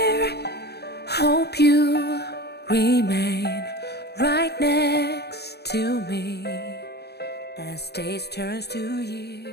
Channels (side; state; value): right; late; 0.48 ms